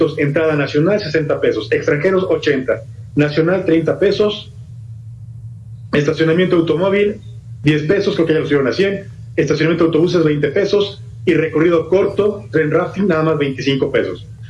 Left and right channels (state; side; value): identical; both; correlation 1.00